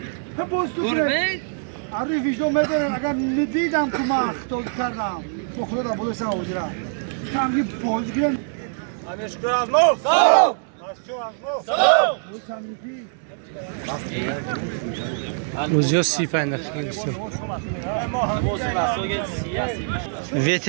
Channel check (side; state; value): left; silent; digital silence